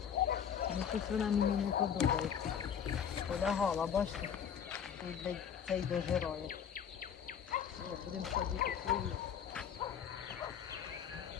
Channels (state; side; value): quieter; right; 8.0 dB